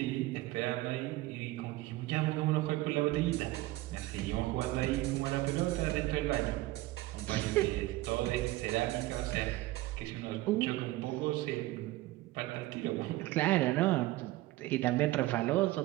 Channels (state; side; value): quieter; left; 18.1 dB